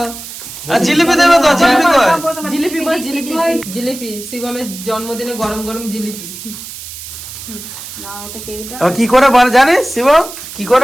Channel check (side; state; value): right; noise; hiss, 12 dB below the sound